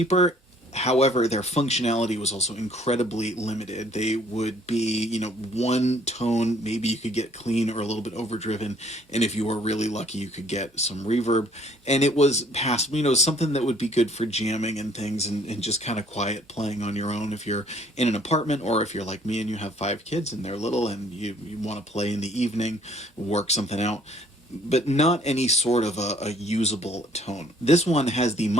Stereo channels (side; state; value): both; normal; correlation 0.60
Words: However, their functionality was also incredibly limited. They would be, one tone, maybe you could get clean or a little bit overdriven, and if you were really lucky, you could get some reverb. And it was passable, something that would be good for jamming and things and just kind of quiet playing on your own if you're in an apartment, or if you're like me and you have 5 kids and they're little and you want to play in the evening, work something out, but not any sort of a usable tone. This one has the